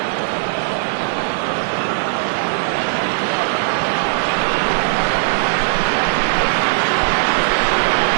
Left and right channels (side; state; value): left; silent; digital silence